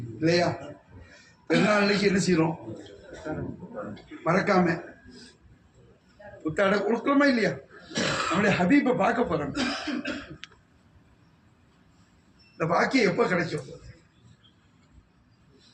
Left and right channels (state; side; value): identical; both; correlation 1.00